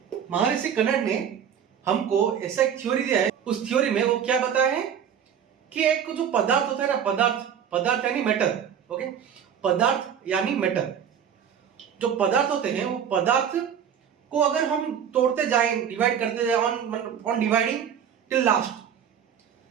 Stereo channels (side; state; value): left; quieter; 8.4 dB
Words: महर्षि कनड ने हमको ऐसा एक थ्योरी दिया है। उस थ्योरी में वो क्या बताया है कि एक जो पदार्थ होता है ना, पदार्थ यानी मैटर। ओके। पदार्थ यानी मैटर। जो पदार्थ होते हैं वो पदार्थ को अगर हम तोड़ते जाएं, डिवाइड करते जाएं ऑन डिवाइडिंग टिल